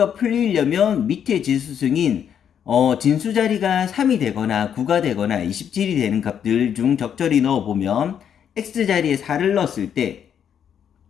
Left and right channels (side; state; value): right; quieter; 8.6 dB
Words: 풀리려면 밑에 지수승인 진수자리가 3이 되거나 9가 되거나 27이 되는 값들 중 적절히 넣어보면 x자리에 4를 넣었을 때